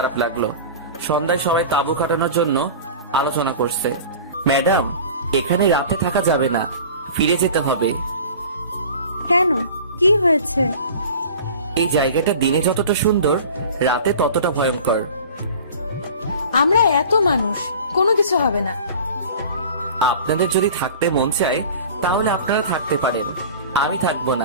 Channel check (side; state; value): both; inverted; correlation -0.40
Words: লাগলো। সন্ধ্যায় সবাই তাঁবু কাটানোর জন্য আলোচনা করছে। ম্যাডাম, এখানে রাতে থাকা যাবে না, ফিরে যেতে হবে। কেন, কি হয়েছে? এই জায়গাটা দিনে যতটা সুন্দর, রাতে ততটা ভয়ঙ্কর। আমরা এত মানুষ, কোনো কিছু হবে না। আপনাদের যদি থাকতে মন চায় তাহলে আপনারা থাকতে পারেন, আমি থাকবো